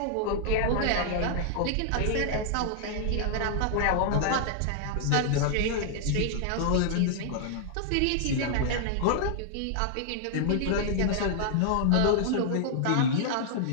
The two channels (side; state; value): both; different; correlation -0.01